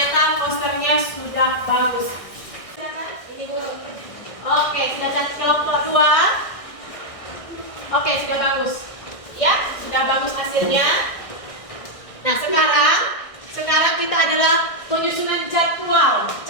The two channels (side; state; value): right; late; 1.6 ms